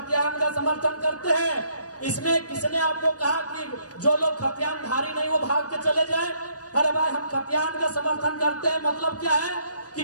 का समर्थन करते हैं। इसमें किसने आपको कहा कि जो लोग खतियानधारी नहीं वो भाग के चले जाए? अरे भाई हम खतियान का समर्थन करते हैं, मतलब क्या है कि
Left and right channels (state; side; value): late; right; 0.68 ms